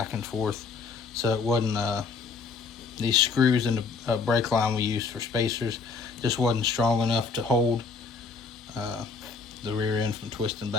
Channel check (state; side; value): quieter; right; 4.8 dB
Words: and forth. So it wasn't, these screws in the brake line we used for spacers just wasn't strong enough to hold the rear end from twisting